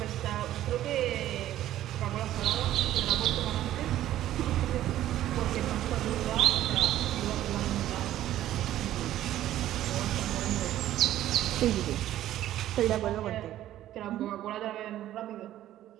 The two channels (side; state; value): left; quieter; 13.1 dB